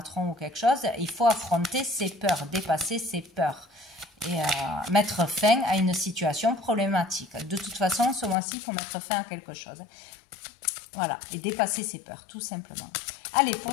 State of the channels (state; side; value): drops out; right; at 8.3 s